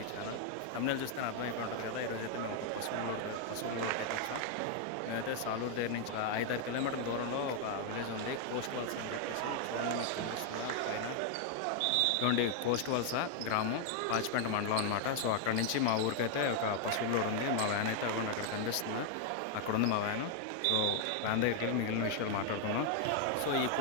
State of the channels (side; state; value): both; different; correlation 0.00